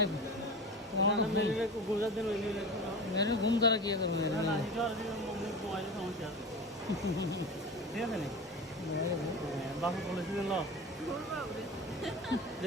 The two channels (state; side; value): normal; both; correlation 0.30